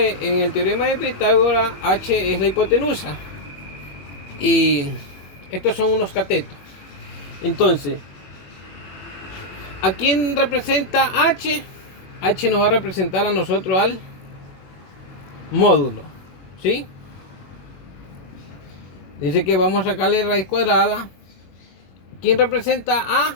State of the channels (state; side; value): late; right; 21 ms